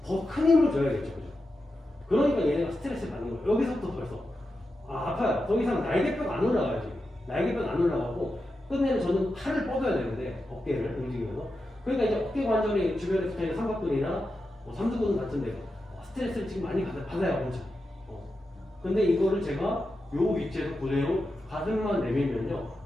더 큰 힘을 줘야겠죠. 그죠? 그러니까 얘네가 스트레스를 받는 거예요. 여기서부터 벌써 아파요. 더 이상 날개뼈가 안 올라가요. 지금 날개뼈가 안 올라가고 끝내는 저는 팔을 뻗어야 되는데 어깨를 움직이면서 그러니까 이제 어깨 관절이 주변에 붙어있는 삼각근이나 삼두근 같은 데가 스트레스를 지금 많이 받아요. 엄청. 근데 이거를 제가 요 위치에서 그대로 가슴만 내밀면요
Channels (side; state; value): both; normal; correlation 0.89